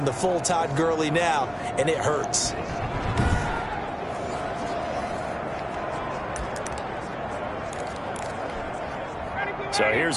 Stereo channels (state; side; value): identical; both; correlation 1.00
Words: the full Todd Gurley now, and it hurts. So